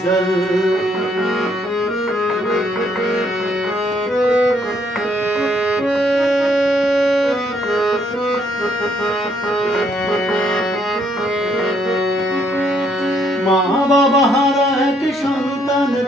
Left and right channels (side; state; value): both; normal; correlation 0.70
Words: মা বাবা হারা এক সন্তান